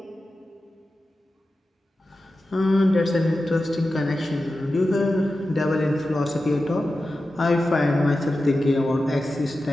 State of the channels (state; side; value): normal; both; correlation 0.93